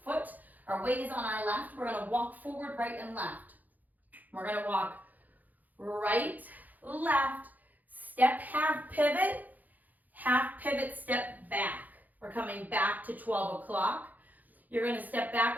foot. Our weight is on our left. We're going to walk forward, right, and left. We're going to walk right, left, step, half pivot, step back. We're coming back to 12 o'clock. You're going to step back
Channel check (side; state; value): left; late; 0.082 ms